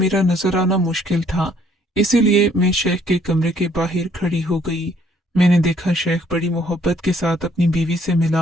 नजर आना मुश्किल था, इसीलिए मैं शेख के कमरे के बाहर खड़ी हो गई। मैंने देखा शेख बड़ी मोहब्बत के साथ अपनी बीवी से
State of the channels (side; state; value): both; normal; correlation 0.64